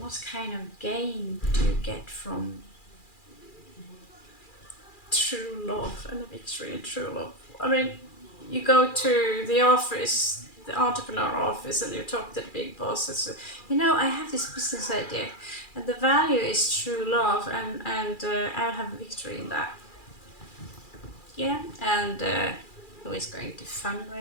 kind of gain do you get from true love and a victory in true love? I mean, you go to the office, the entrepreneur office, and you talk to the big boss and say, you know, I have this business idea, and the value is true love, and I'll have a victory in that. Yeah, and who is going to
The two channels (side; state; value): right; late; 2.4 ms